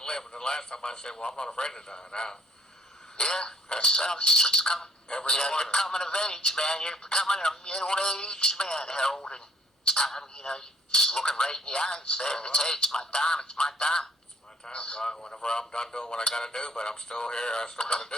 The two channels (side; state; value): both; normal; correlation 0.62